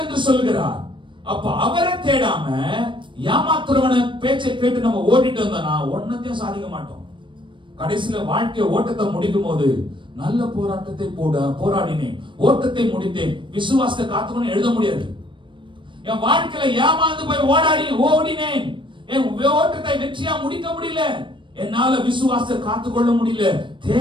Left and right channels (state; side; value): late; left; 0.24 ms